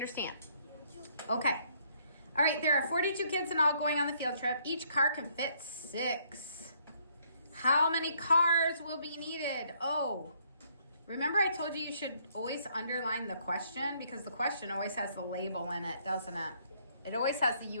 Okay. All right, there are 42 kids in all going on the field trip. Each car can fit 6. How many cars will be needed? Oh, remember I told you should always underline the question because the question always has the label in it, doesn't it? It always has the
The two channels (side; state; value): both; inverted; correlation -0.67